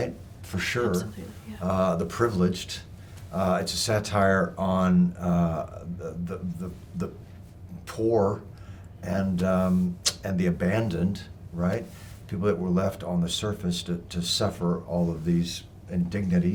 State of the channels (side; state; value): both; identical; correlation 1.00